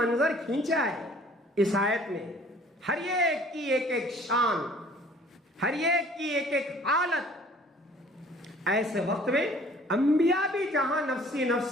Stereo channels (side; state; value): both; normal; correlation 0.53